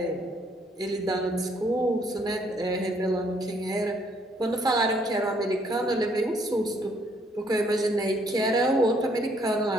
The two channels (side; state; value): both; normal; correlation 0.67